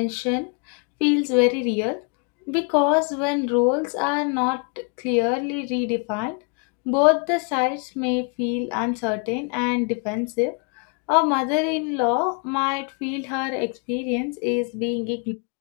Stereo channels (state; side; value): quieter; right; 36.9 dB